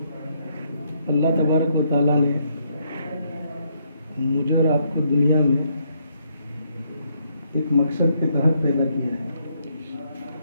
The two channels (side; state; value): both; inverted; correlation -0.73